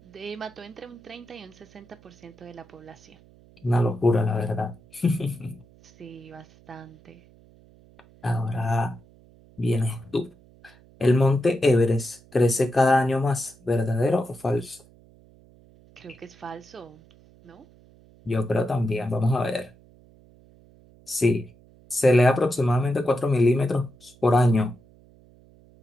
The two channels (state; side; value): noise; right; hum, 27 dB below the sound